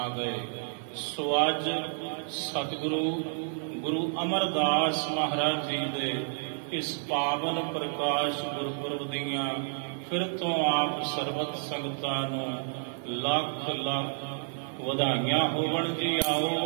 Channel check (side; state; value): left; silent; 58 dB below the other